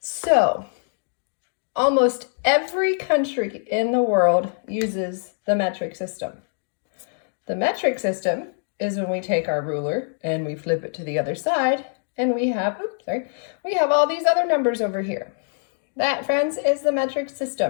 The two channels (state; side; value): silent; right; digital silence